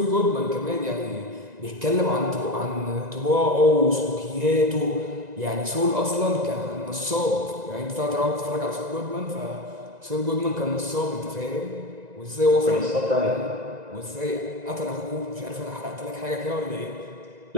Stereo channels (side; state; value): left; late; 1.9 ms